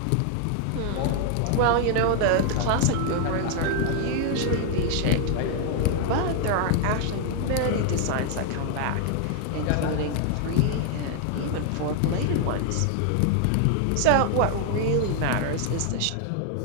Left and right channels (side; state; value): both; different; correlation 0.00